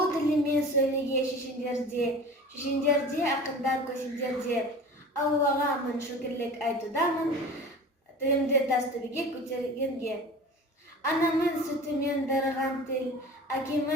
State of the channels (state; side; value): normal; both; correlation 0.38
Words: тілімен сөйлеге шешендерде, ақындар көсендерде. Аллаға мың шүкірлік айтудамын, тілімді тас төбеге көтергенге. Анамын сүтімен дарыған тіл,